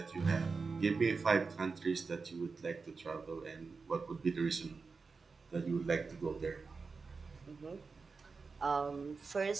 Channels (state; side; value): quieter; left; 4.6 dB